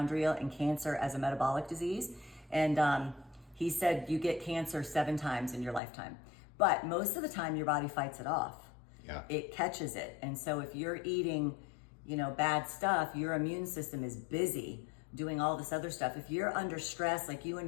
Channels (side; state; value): right; drops out; at 5.8 s